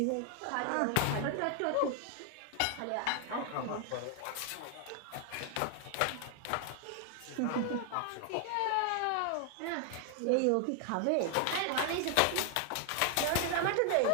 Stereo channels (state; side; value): different; both; correlation 0.00